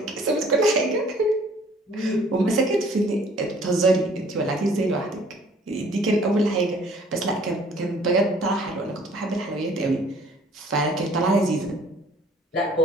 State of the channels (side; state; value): both; normal; correlation 0.56